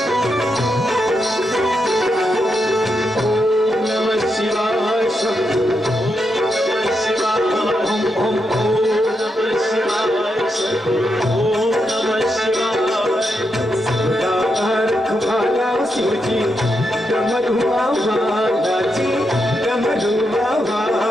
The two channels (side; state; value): both; normal; correlation 0.83